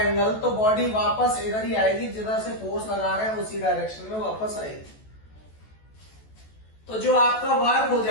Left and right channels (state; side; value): late; right; 14 ms